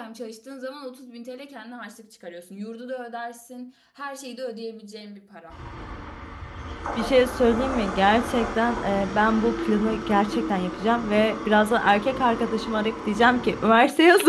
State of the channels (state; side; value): identical; both; correlation 1.00